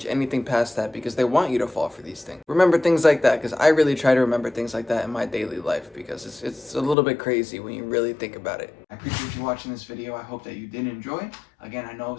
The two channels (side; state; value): right; drops out; at 7.0 s